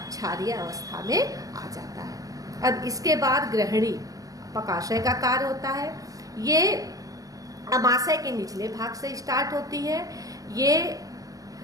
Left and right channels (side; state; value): left; late; 0.17 ms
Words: क्षारीय अवस्था में आ जाता है। अब इसके बाद ग्रहणी पकाशय का कार्य होता है। ये आमाशय के निचले भाग से स्टार्ट होती है। ये